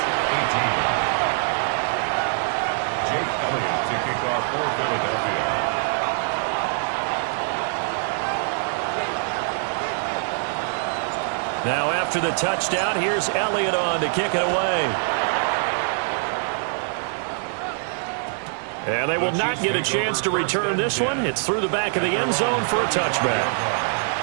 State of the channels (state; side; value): silent; left; 61 dB below the other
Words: 18. Jake Elliott to kick off for Philadelphia. Now after the touchdown, here's Elliott on to kick it away. And they will not get a chance to return this one. It's through the back of the end zone for a touchback.